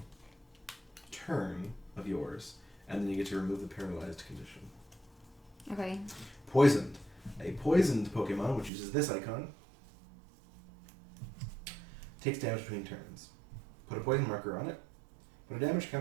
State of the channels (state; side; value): drops out; left; at 8.7 s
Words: turn of yours, and then you get to remove the paralyzed condition. Okay. Poisoned. A poisoned Pokemon, which uses this icon, takes damage between turns. Put a poison marker on it. Put a damage